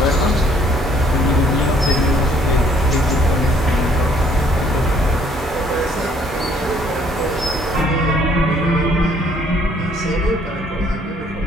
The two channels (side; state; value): both; normal; correlation 0.62